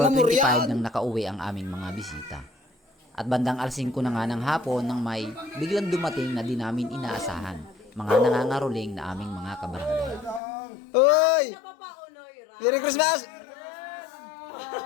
25 nang nakauwi ang aming mga bisita. At bandang alas 5 na nga ng hapon nang may biglang dumating na di namin inaasahan, mga nangangaroling na aming mga kabarangay. Uy! Merry Christmas!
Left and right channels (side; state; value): right; drops out; at 10.4 s